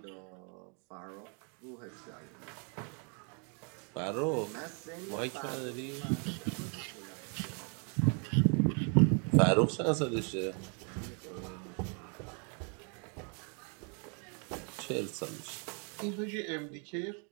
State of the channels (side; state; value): left; quieter; 38.6 dB